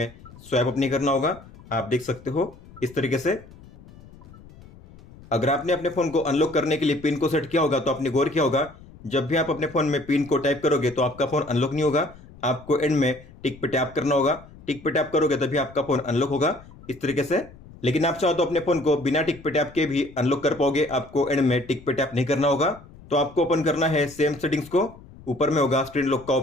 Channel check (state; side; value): noise; left; rumble, 21 dB below the sound